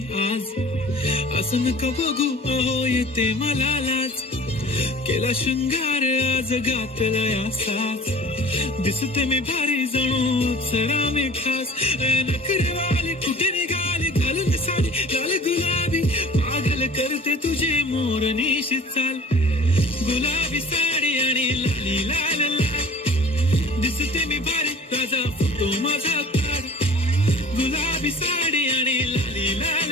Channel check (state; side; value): normal; both; correlation 0.45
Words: आज, असं नका बघू अहो येते मला लाज. केला शृंगार आज घातला या साज, दिसते मी भारी जणू सरा मी खास. नखरेवाली कुठे निघाली घालून साडी लाल गुलाबी, पागल करते तुझे मोरनीशी चाल. गुलाबी साडी आणि लाली लाल लाल, दिसते मी भारी ताजा फोटो माझा काढ. गुलाबी साडी आणि लाली लाल